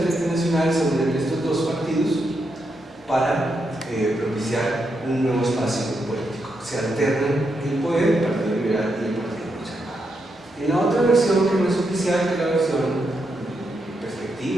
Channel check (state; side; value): normal; both; correlation 0.82